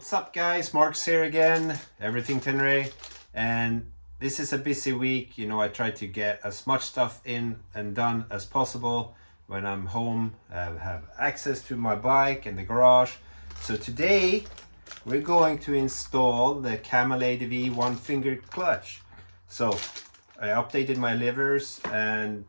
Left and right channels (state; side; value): inverted; both; correlation -1.00